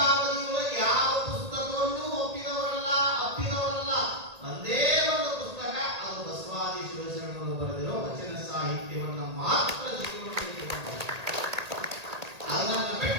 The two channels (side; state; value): left; late; 1.8 ms